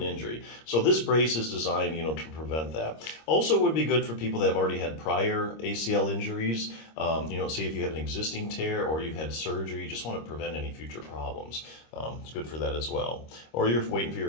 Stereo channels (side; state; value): right; late; 26 ms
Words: injury. So this brace is designed, to prevent that. Also would be good for people that have already had prior ACL injuries. Say if you have an existing tear or you've had surgery, you just want to prevent any future problems. It's good for that as well. Or you're waiting for